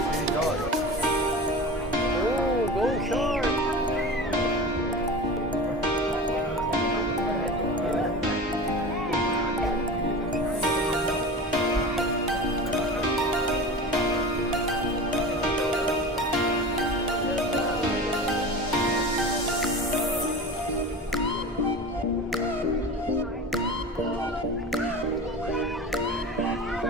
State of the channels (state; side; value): normal; both; correlation 0.32